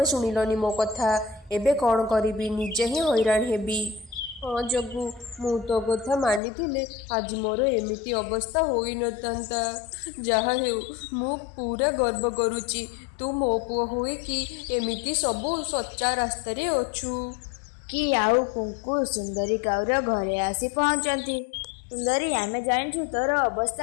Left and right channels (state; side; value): drops out; right; at 6.4 s